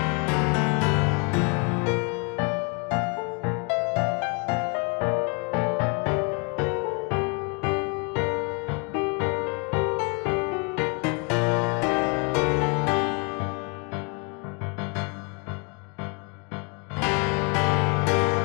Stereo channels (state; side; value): quieter; right; 34.1 dB